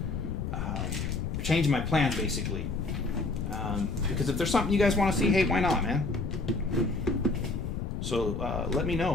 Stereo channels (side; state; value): left; noise; rumble, 3 dB below the sound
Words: changing my plans, basically. Because if there's something you guys want to see, hey, why not, man? So let me